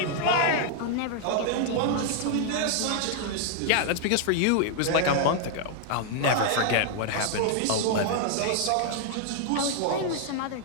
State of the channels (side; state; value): both; different; correlation 0.00